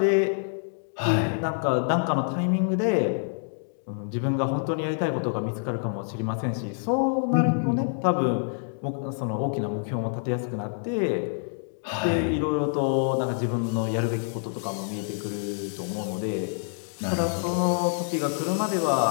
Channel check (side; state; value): right; silent; digital silence